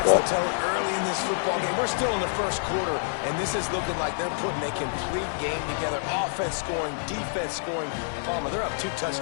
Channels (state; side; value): silent; right; digital silence